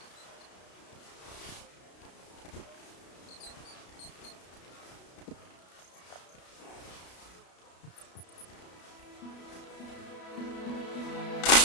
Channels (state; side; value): late; right; 33 ms